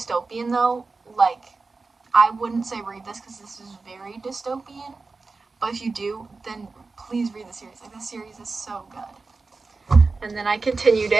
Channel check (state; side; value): quieter; left; 4.0 dB